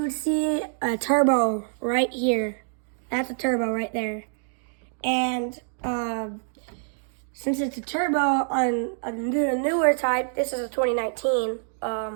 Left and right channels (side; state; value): left; silent; digital silence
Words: would see a turbo right here. That's a turbo right there. And since it's a turbo on a newer type, this is a 2019.